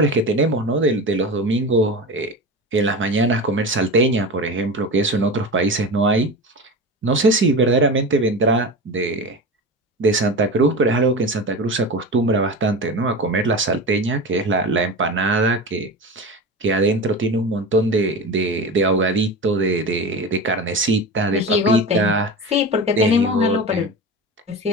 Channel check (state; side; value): normal; both; correlation 0.27